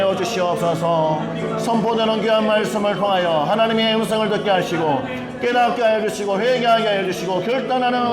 주시옵소서. 선포되는 귀한 말씀을 통하여 하나님의 음성을 듣게 하시고 깨닫게 하여 주시고 회개하게 하여 주시고 결단하는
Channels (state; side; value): identical; both; correlation 1.00